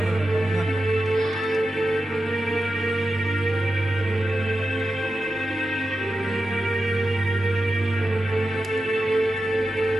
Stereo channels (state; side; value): normal; both; correlation 0.90